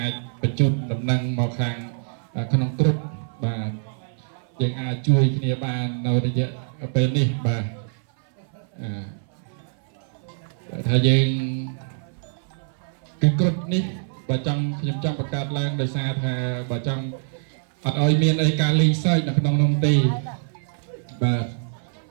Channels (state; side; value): silent; left; 60 dB below the other